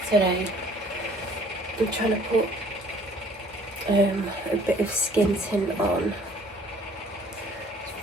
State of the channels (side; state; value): both; normal; correlation 0.56